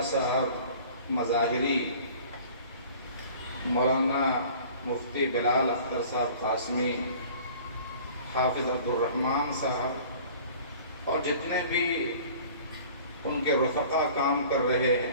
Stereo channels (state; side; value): inverted; both; correlation -0.47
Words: صاحب مظاہری، مولانا مفتی بلال اختر صاحب قاسمی، حافظ عبدالرحمن صاحب اور جتنے بھی ان کے رفقا کام کر رہے